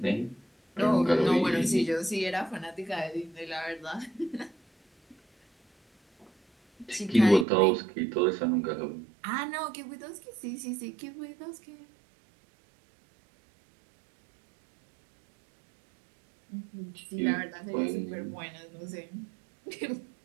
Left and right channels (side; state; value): left; drops out; at 7.5 s